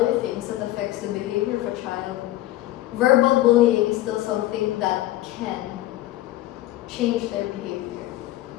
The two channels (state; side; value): quieter; right; 15.7 dB